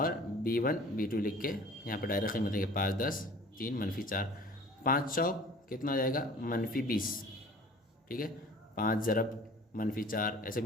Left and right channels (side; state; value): both; normal; correlation 0.47